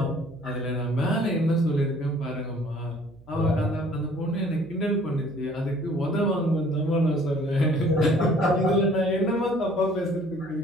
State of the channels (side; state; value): right; noise; hum, 26 dB below the sound